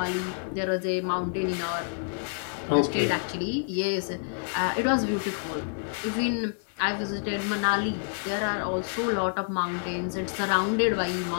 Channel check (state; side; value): silent; right; 59 dB below the other